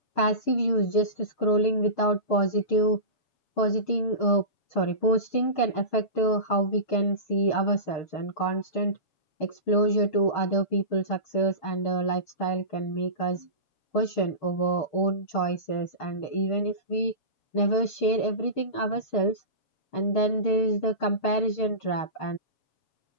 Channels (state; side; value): late; right; 6.5 ms